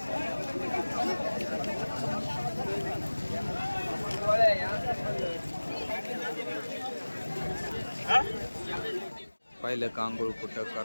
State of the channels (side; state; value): both; inverted; correlation -1.00